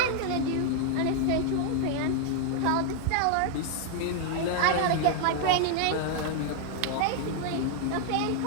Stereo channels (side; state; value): both; different; correlation 0.00